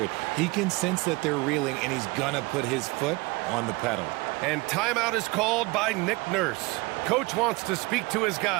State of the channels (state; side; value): quieter; left; 24.6 dB